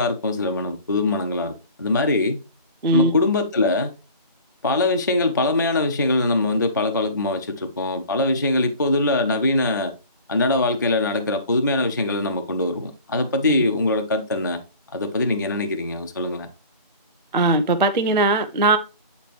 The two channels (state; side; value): inverted; both; correlation -0.41